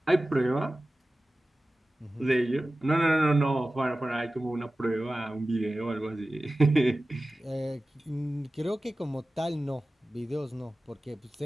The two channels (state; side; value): normal; both; correlation 0.96